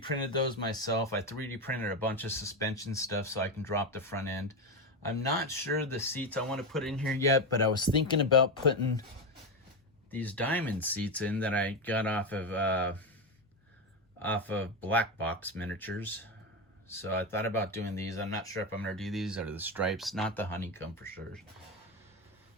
printed those myself. I 3D printed a bunch of suspension stuff so I can drop the front end. I'm not sure the seats I want to put in here yet, but I was thinking about putting these diamond seats in that I got off of Black Box Miniatures. So I thought about doing these. I'm not sure if I'm going to do these or the stripes, not the honeycomb for sure.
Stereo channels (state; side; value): normal; both; correlation 0.13